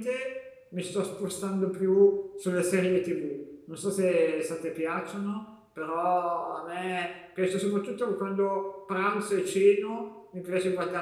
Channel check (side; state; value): both; identical; correlation 1.00